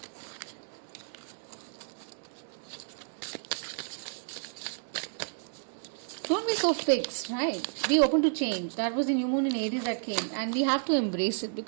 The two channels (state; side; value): silent; left; digital silence